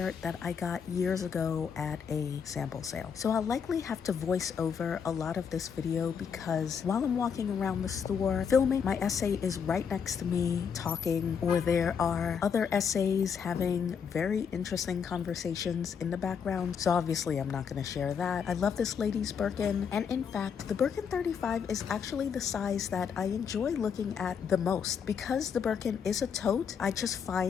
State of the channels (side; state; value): right; quieter; 6.8 dB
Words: that I got years ago at a sample sale. So I'll likely have to voice over a lot of this video because while I'm walking around the store filming, my essay is right next to me talking, or there are other essays having very interesting conversations in the background, so obviously I'm not going to share that. I love this lady's Birkin, and in fact the Birkin 35 is actually the size that I enjoy looking at the most. Because the Birkin is a tote, I just